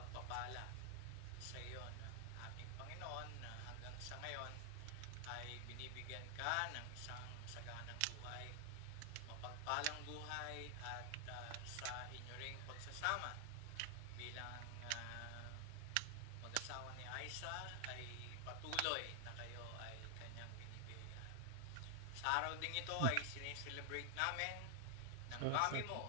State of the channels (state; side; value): different; both; correlation 0.00